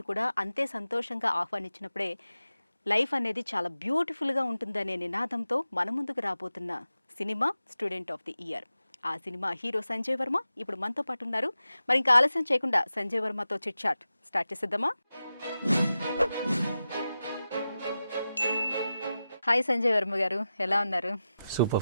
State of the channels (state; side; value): inverted; both; correlation -0.92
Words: కూడా అంతే సంతోషంగా ఆహ్వానించినప్పుడే లైఫ్ అనేది చాలా బ్యూటిఫుల్గా ఉంటుందనే నినాదంతో మన ముందుకు రాబోతున్న cinema student of the year. ఆ సినిమా హీరో సంజయ్ వర్మ ఇప్పుడు మనతో పాటు ఉన్నారు. మరి ఇంకా ఆలస్యం చేయకుండా సంజయ్ వర్మతో చిట్ చాట్ స్టార్ట్ చేసేద్దామా? హాయ్ సంజయ్ వర్మ గారు, ఎలా ఉన్నారు? Super